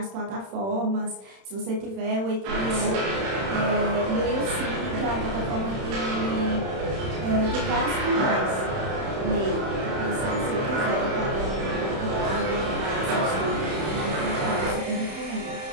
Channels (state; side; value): late; left; 31 ms